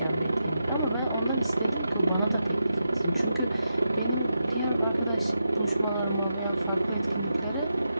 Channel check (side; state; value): both; inverted; correlation -0.87